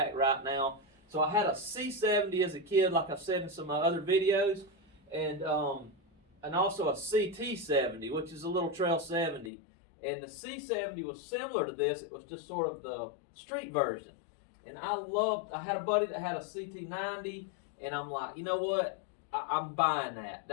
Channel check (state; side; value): drops out; right; at 9.5 s